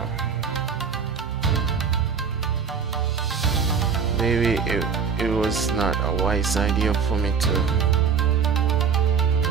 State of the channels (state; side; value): quieter; left; 6.3 dB